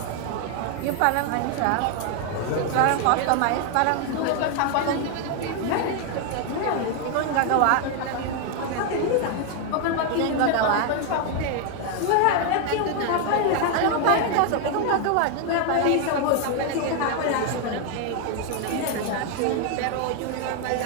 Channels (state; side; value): different; both; correlation 0.00